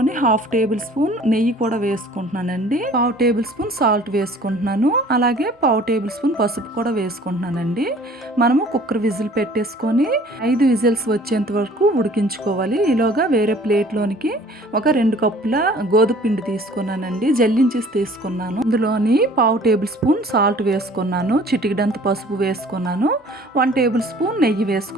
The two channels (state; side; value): normal; both; correlation 0.51